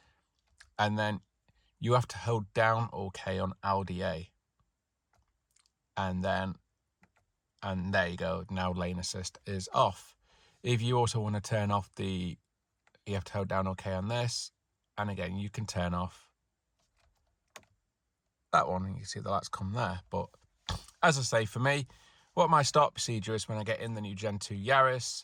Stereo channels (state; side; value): identical; both; correlation 1.00